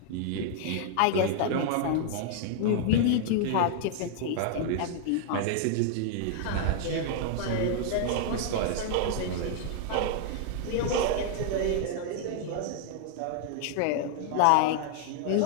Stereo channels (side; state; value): both; different; correlation 0.00